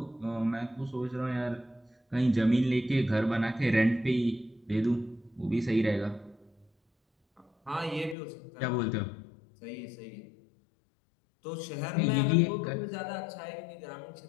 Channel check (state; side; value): drops out; right; at 8.2 s